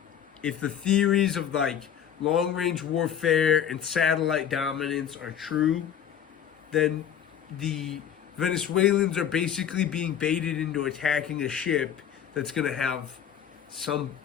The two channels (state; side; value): quieter; right; 9.0 dB